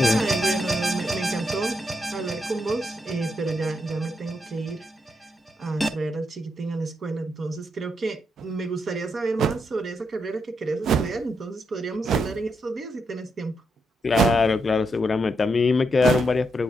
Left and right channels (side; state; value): both; normal; correlation 0.81